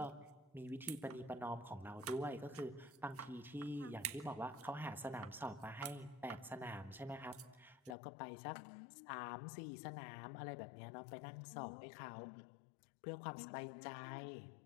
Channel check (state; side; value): drops out; right; at 8.0 s